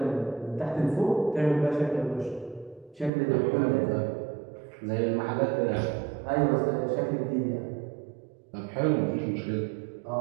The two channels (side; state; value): left; drops out; at 3.1 s